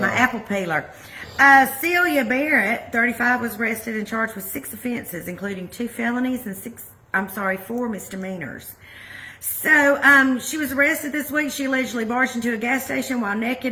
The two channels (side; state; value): both; identical; correlation 1.00